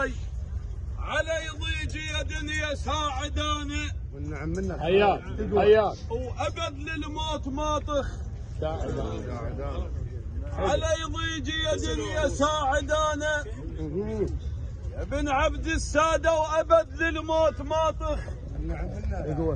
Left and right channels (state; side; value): identical; both; correlation 1.00